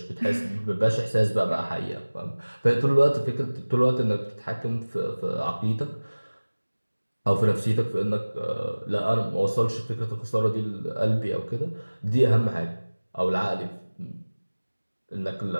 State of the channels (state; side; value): inverted; both; correlation -1.00